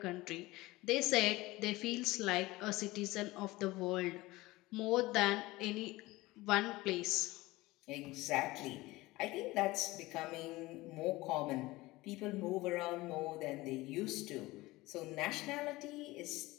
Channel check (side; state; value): right; quieter; 19.9 dB